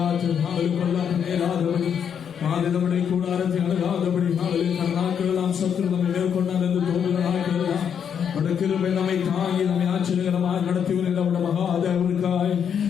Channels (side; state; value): right; quieter; 7.9 dB